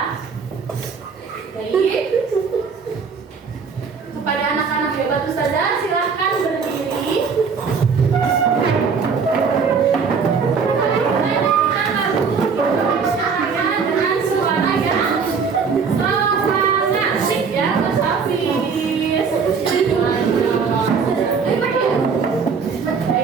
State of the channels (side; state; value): left; quieter; 5.6 dB